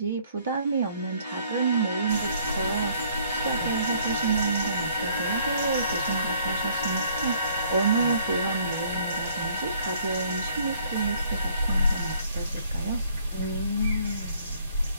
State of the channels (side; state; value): both; inverted; correlation -0.61